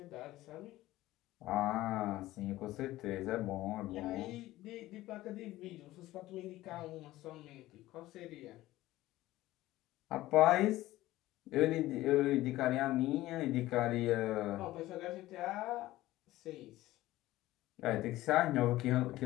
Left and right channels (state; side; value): quieter; right; 16.4 dB